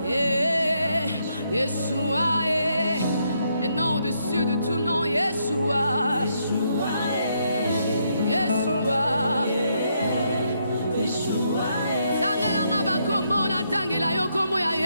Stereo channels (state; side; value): inverted; both; correlation -0.76